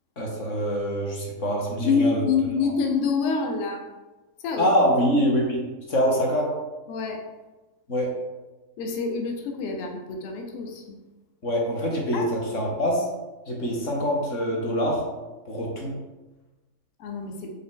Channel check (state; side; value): late; right; 3.6 ms